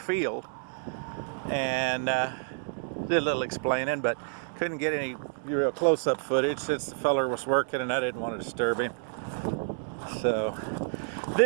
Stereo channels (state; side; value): silent; left; 58 dB below the other